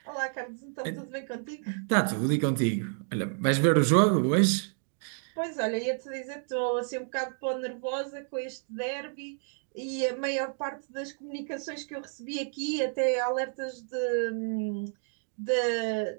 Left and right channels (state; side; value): silent; left; 58 dB below the other